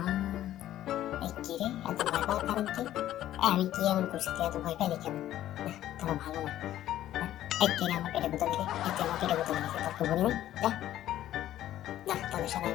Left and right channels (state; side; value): quieter; right; 12.9 dB